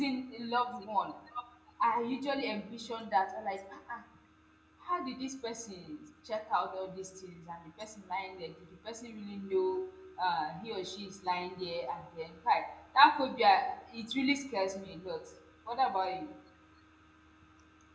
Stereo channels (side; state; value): both; identical; correlation 1.00